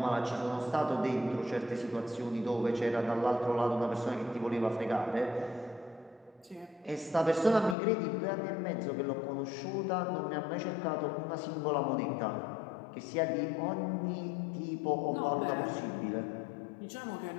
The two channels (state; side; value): drops out; right; at 7.8 s